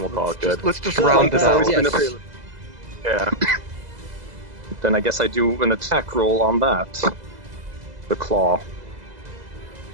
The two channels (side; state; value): left; late; 2.0 ms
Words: we'll call it good. Let's just No, round it no, out. yes. Yeah. Then I guess I do an attack roll on that. The claw.